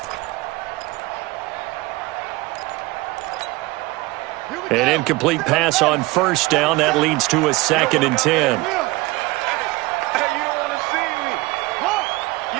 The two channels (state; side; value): quieter; left; 21.5 dB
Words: An incomplete pass on first down. That leads to a 2nd and 10. Hey, you don't want to see me. You